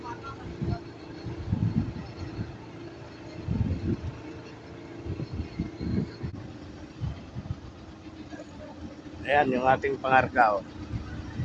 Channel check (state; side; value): identical; both; correlation 1.00